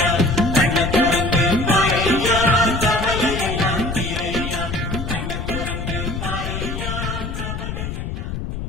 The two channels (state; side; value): noise; left; rumble, 5 dB below the sound